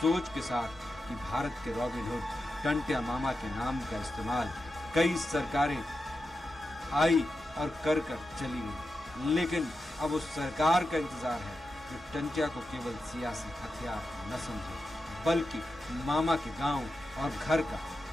के साथ कि भारत के रॉबिन हुड टंटिया मामा के नाम का इस्तेमाल कई सरकारें आई और कर चली गई, लेकिन अब उस सरकार का इंतजार है जो टंटिया को केवल सियासी हथियार न समझे बल्कि मामा के गांव और घर का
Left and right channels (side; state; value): both; normal; correlation 0.90